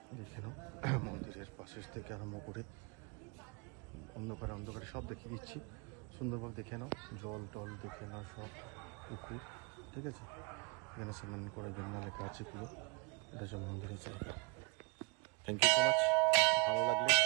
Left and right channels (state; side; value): quieter; left; 26.5 dB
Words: দেখে নাও, মন্দিরের পাশের থেকে আরম্ভ করে অন্ধকারে সব দেখিয়ে দিচ্ছি সুন্দরভাবে। দেখে নাও, জল টল দেখে নাও, সব পুকুর। ঠিক আছে, এখানে স্নান করার জন্য লেখা আছে পুরো, এটা হচ্ছে মন্দিরের জায়গা। Thank you so much. ভালো লাগলে